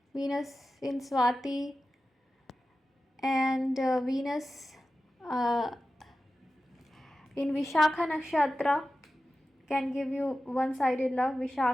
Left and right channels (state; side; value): normal; both; correlation 0.94